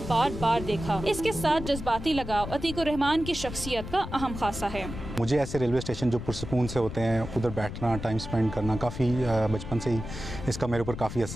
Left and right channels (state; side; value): noise; left; rumble, 9 dB below the sound